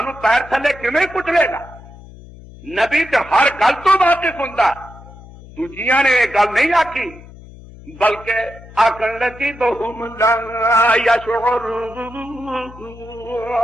پیر تھلے کیویں کچلے گا؟ نبی تے ہر گل تو واقف ہوندا، دوجیاں نے یہ گل نہیں آکی، بلکہ آکھن لگی بہم لا یشعرون،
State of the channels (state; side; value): noise; left; hum, 19 dB below the sound